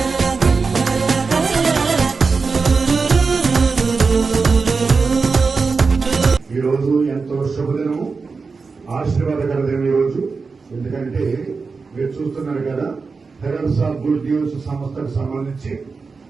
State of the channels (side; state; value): left; quieter; 4.6 dB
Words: ఈ రోజు ఎంతో శుభదినము, ఆశీర్వాదకర దినం ఈ రోజు. ఎందుకంటే మీరు చూస్తున్నారు కదా, హెరల్స్ ఆఫ్ గుడ్ న్యూస్ సంస్థకు సంబంధించి